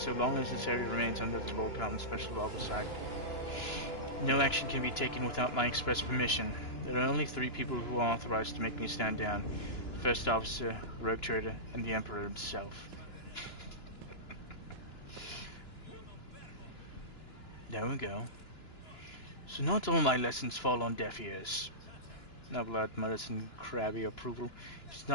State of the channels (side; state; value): right; late; 2.9 ms